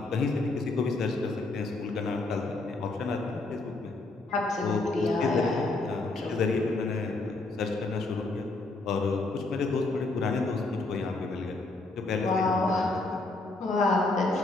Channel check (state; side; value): quieter; right; 3.1 dB